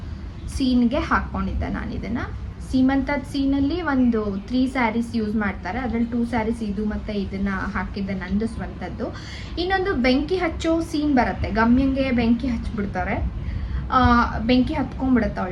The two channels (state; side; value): identical; both; correlation 1.00